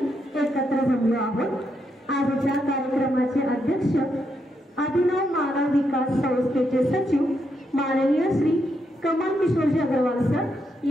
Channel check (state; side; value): normal; both; correlation 0.80